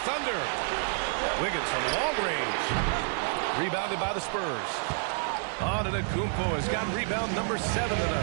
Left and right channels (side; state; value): left; silent; 59 dB below the other